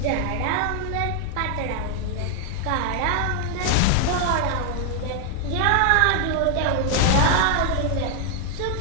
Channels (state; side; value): different; both; correlation 0.00